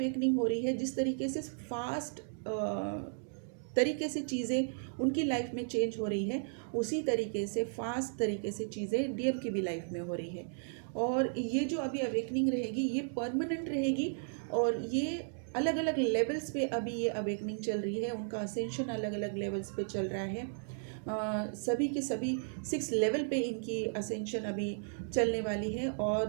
हो रही है, जिस तरीके से फास्ट तरीके से चीज़ें उनकी लाइफ में चेंज हो रही है, उसी तरीके से फास्ट तरीके से चीज़ें डीएम की भी लाइफ में हो रही है। और ये जो अभी अवेकनिंग रहेगी, ये परमानेंट रहेगी, और ये अलग अलग लेवल्स पे अभी ये अवेकनिंग चल रही है। उनका असेंशन अलग अलग लेवल्स पे चल रहा है। सभी के सभी 6 लेवल पे इनकी असेंशन अभी चलने वाली है, और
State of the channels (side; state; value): left; silent; digital silence